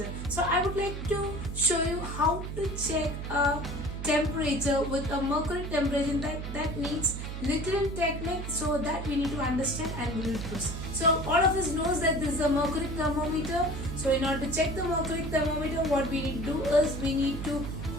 So I would like to show you how to check a temperature with a mercury temperature. That needs little technique, so that we need to understand and we will proceed. So all of us knows that this is a mercury thermometer. So in order to check the mercury thermometer, what we need to do is we need to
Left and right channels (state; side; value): noise; right; hum, 6 dB below the sound